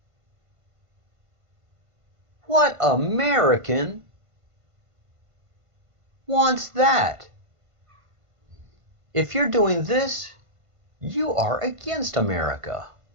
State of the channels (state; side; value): late; left; 1.5 ms